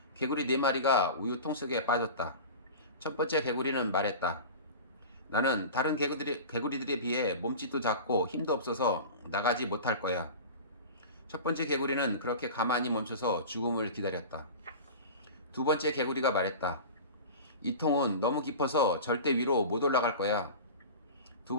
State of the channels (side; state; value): both; inverted; correlation -0.33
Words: 개구리 4마리가 우유통 속에 빠졌다. 첫 번째 개구리는 말했다. 나는 다른 개구리들에 비해 몸집도 작고 힘도 없어서 나가지 못할 거야. 첫 번째 개구리는 그렇게 가만히 멈춰서 죽음을 기다렸다. 두 번째 개구리가 말했다. 이 통은 너무 깊어서 절대 위로 못 올라갈 거야. 두